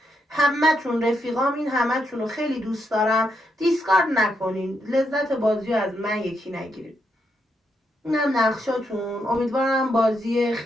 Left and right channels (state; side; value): normal; both; correlation 0.80